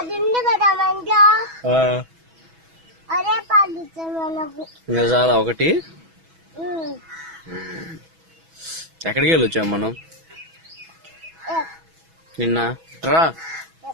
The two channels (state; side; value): late; left; 6.1 ms